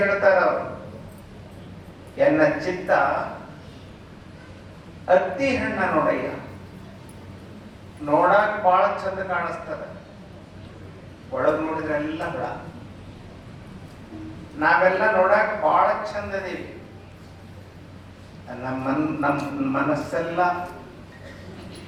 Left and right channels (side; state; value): both; identical; correlation 1.00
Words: ಹೇಳ್ತಾರ ಅವರು, ಎನ್ನ ಚಿತ್ತ ಅತ್ತಿ ಹಣ್ಣ ನೋಡಯ್ಯ, ನೋಡಾಕ ಬಹಳ ಚಂದ ಕಾಣಿಸ್ತದ, ಒಳಗ್ ನೋಡಿದ್ರೆ ಎಲ್ಲ ಹುಳ. ನಾವೆಲ್ಲ ನೋಡಾಕ ಬಹಳ ಚಂದ ಇದೀವಿ, ನಮ್ಮ ಮನಸ್ಸೆಲ್ಲ